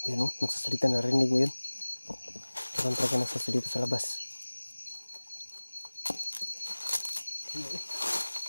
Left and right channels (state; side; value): inverted; both; correlation -1.00